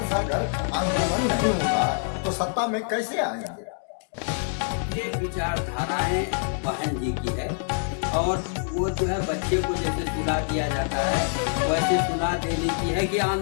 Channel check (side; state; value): right; silent; digital silence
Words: अगर आंदोलन नहीं होगा तो सत्ता में कैसे आएंगे? ये विचारधाराएं बहन जी की है और वो जो है बच्चे को जैसे सुला दिया जाता है वैसे सुला देने की है कि